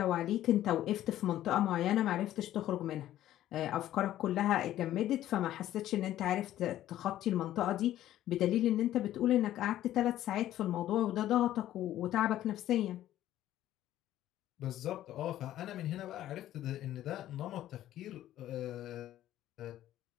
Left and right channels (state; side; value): quieter; right; 13.1 dB